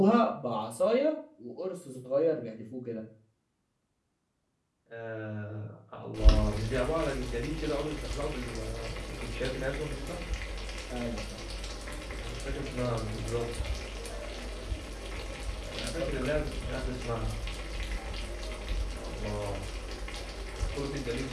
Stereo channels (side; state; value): both; identical; correlation 1.00